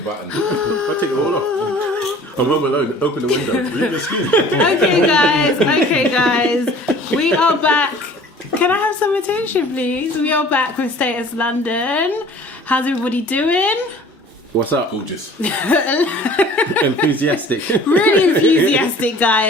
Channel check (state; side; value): normal; both; correlation 0.48